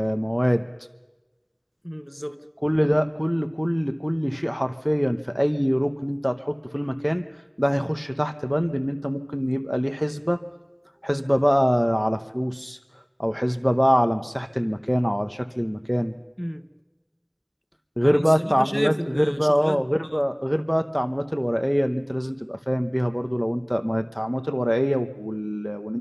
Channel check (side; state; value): both; identical; correlation 1.00